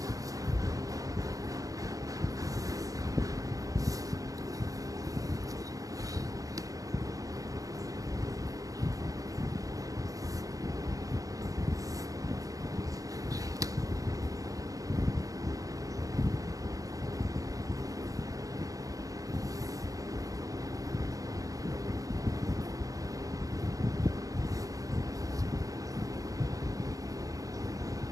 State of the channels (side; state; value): left; late; 0.17 ms